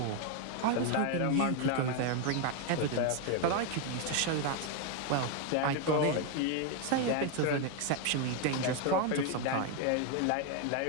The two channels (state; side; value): different; both; correlation 0.01